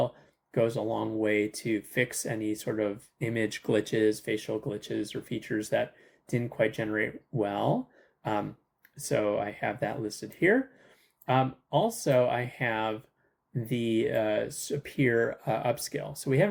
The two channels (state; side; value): identical; both; correlation 1.00